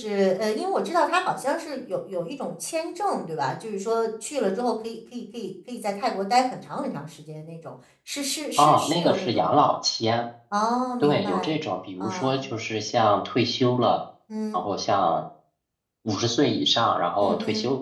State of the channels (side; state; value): both; identical; correlation 1.00